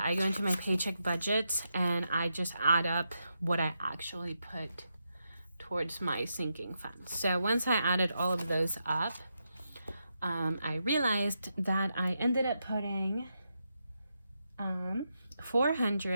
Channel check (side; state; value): both; inverted; correlation -0.84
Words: I go into my paycheck budgets and I just add up what I actually put towards my sinking funds. So once I added all of those up, I realized that I ended up putting